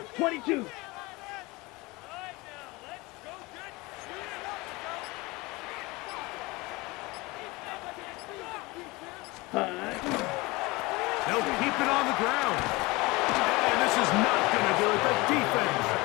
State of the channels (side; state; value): right; quieter; 23.2 dB